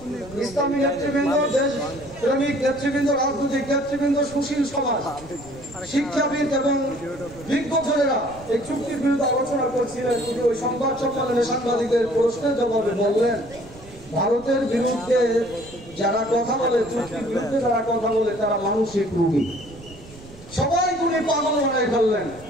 ইসলামী নেতৃবৃন্দ, দেশ প্রেমিক নেতৃবৃন্দ, রাজনৈতিক নেতৃবৃন্দ, সুশীল সমাজ, শিক্ষাবিদ এবং বিজ্ঞজনেরা এই চুক্তির বিরুদ্ধে আলোচনা করছিলেন। তিনি ওই সংবাদ সম্মেলনে সাংবাদিকদের প্রশ্নের জবাবে বললেন, ভারতের বিরুদ্ধে যারা কথা বলে, চুক্তির বিরুদ্ধে যারা কথা বলে, তারা মানসিক রোগী। সবাই উনি পাগল বানাই ফেললেন।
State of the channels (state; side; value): noise; right; rumble, 19 dB below the sound